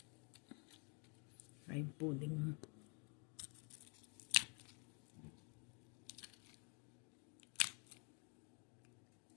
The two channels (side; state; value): right; quieter; 37.1 dB